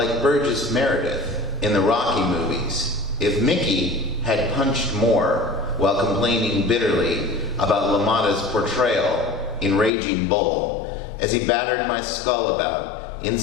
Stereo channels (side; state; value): right; drops out; at 9.9 s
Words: Burgess Meredith in the Rocky movies. If Mickey had punched more while complaining bitterly about LaMotta's portrayal in Raging Bull as he battered my skull about